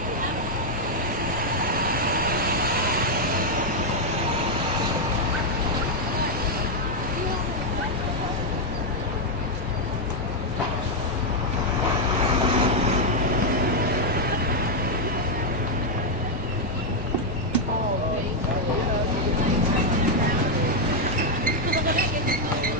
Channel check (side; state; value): both; normal; correlation 0.00